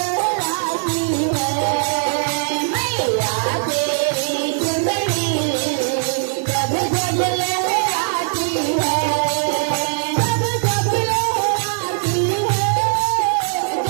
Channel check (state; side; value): silent; left; digital silence